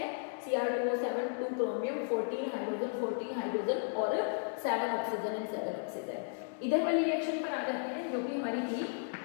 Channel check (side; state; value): right; silent; digital silence